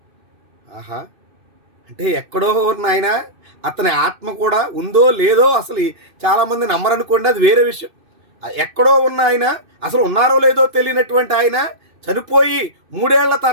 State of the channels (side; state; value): left; late; 2.6 ms